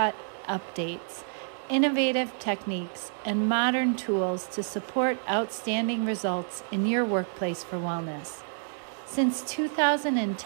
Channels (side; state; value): left; silent; digital silence